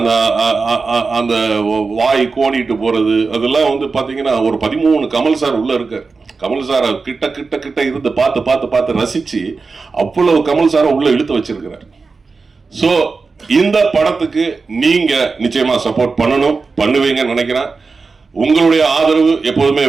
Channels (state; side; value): quieter; left; 4.4 dB